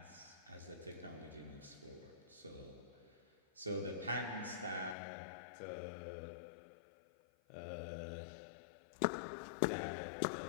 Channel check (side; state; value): right; drops out; at 5.0 s